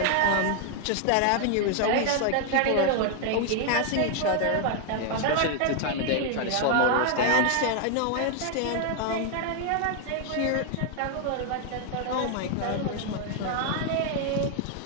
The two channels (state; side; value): different; both; correlation 0.00